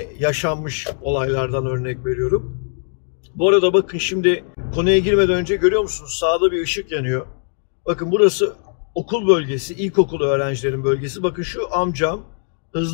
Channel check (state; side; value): silent; right; digital silence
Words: yaşanmış olaylardan örnek veriyorum. Bu arada bakın şimdi konuya girmeden önce görüyor musunuz? Sağda bir ışık yanıyor. Bakın burası okul bölgesi, ilkokul öğrencilerin bölgesi. Bakın şu amcam